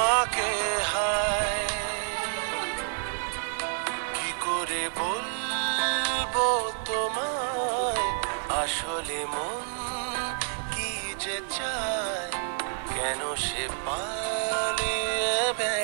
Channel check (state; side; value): silent; left; 59 dB below the other